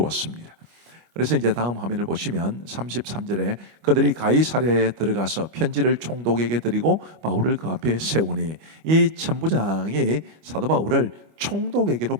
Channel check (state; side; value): late; left; 25 ms